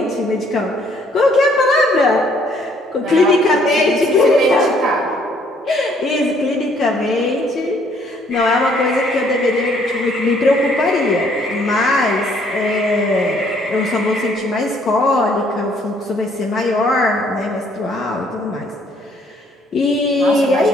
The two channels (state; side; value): normal; both; correlation 0.64